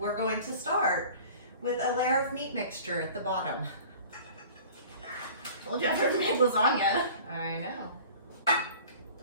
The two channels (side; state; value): both; inverted; correlation -0.44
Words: going to start with a layer of meat mixture at the bottom. Told you I've never made lasagna. I know.